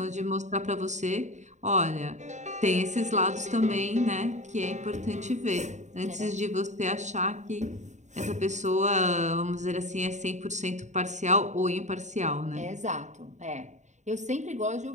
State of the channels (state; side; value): late; left; 0.34 ms